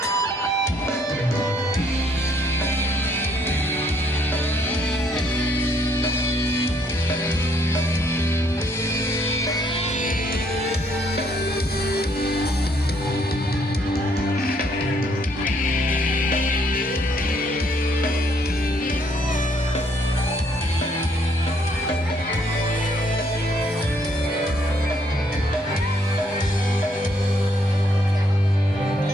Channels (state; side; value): normal; both; correlation 0.68